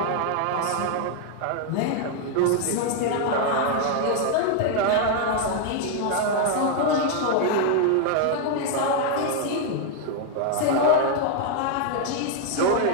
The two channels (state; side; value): different; both; correlation 0.00